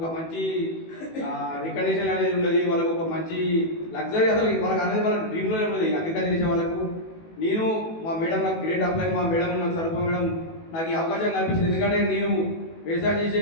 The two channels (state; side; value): late; right; 18 ms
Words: మంచి రికగ్నిషన్ అనేది ఉండదు. వాళ్ళకి ఒక మంచి లగ్జరీ అసలు వాళ్ళకి అనేది వాళ్ళ డ్రీమ్లోనే ఉండదు అగ్రికల్చర్ చేసే వాళ్ళకు. నేను మా మేడం నాకు గ్రేట్ అప్లై, మా మేడం నాకు సరిపో మేడం నాకు ఈ అవకాశం కల్పించింది. ఎందుకంటే నేను వ్యవసాయం చేసే